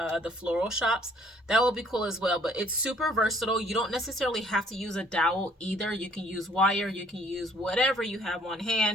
floral shops. That will be cool as well. But it's super versatile. You don't necessarily have to use a dowel either. You can use wire. You can use whatever you have on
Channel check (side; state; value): both; normal; correlation 0.60